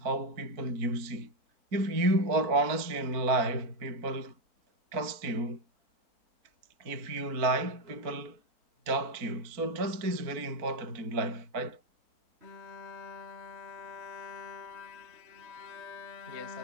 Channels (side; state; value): left; late; 4.4 ms